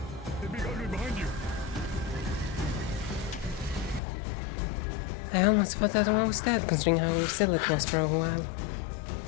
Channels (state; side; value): drops out; right; at 4.0 s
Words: I almost thought that one was dead, considering how still it was for a while.